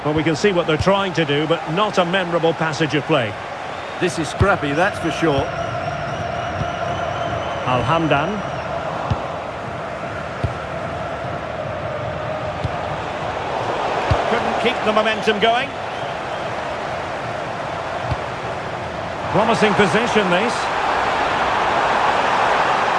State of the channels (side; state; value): both; identical; correlation 1.00